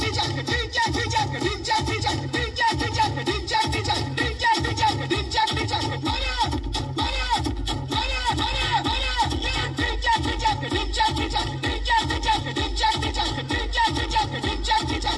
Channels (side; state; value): both; identical; correlation 1.00